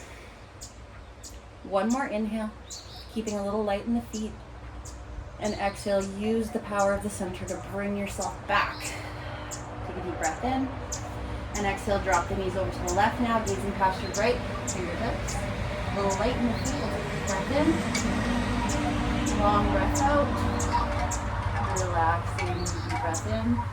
One more inhale. Keeping a little light in the feet. And exhale. Use the power of the center to bring yourself back. Take a deep breath in. And exhale, drop the knees over to the left now, gazing past your right fingertips. A little light in the feet, breath in. Long breath out. Relaxing, deep breath in.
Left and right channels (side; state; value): both; identical; correlation 1.00